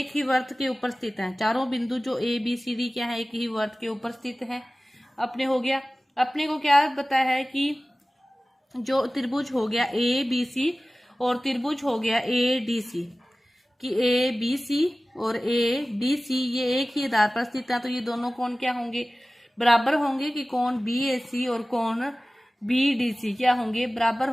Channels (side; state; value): both; normal; correlation 0.97